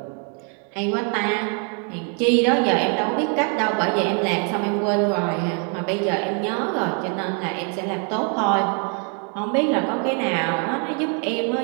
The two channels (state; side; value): quieter; left; 39.3 dB